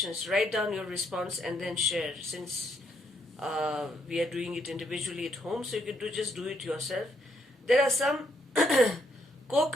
Write down your response and then share. Since we are doing it individually at home, so you can just do it yourself. There are some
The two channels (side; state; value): both; normal; correlation 0.74